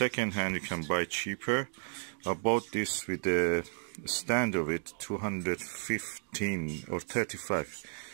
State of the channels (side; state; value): left; silent; digital silence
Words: hand you can buy cheaper. I bought this with the stand of it, 215 or 35.